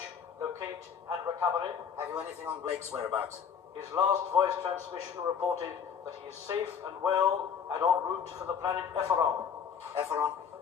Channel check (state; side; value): quieter; right; 7.3 dB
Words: locate, and recovery. Have you anything on Blake's whereabouts? His last voice transmission reported that he is safe and well and en route for the planet Efferon. Efferon?